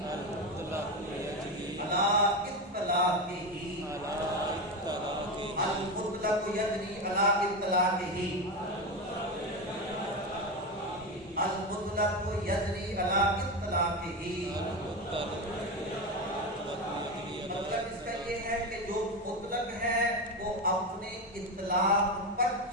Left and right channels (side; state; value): both; normal; correlation 0.16